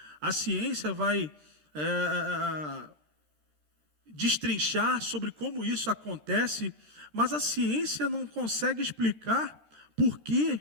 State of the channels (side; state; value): left; late; 13 ms